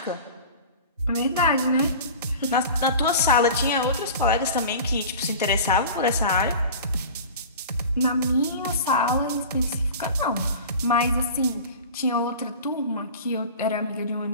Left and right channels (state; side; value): inverted; both; correlation -0.37